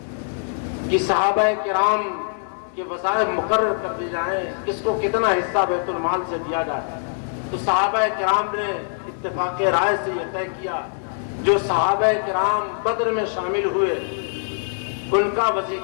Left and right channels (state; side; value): silent; right; digital silence